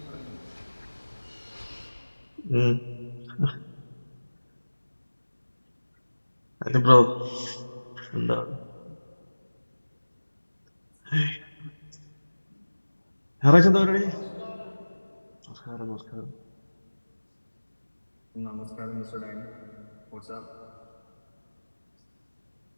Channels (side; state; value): both; inverted; correlation -1.00